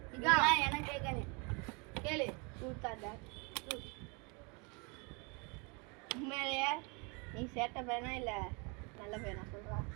இதா எனக்கு கேக்கணும் கேளு கூத்தாடா உண்மையிலேயே நீ சேட்ட பையனா இல்ல நல்ல பையனா சொல்றா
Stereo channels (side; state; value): left; quieter; 31.7 dB